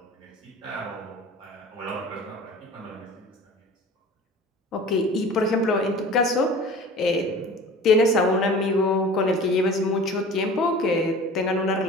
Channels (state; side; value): normal; both; correlation 0.41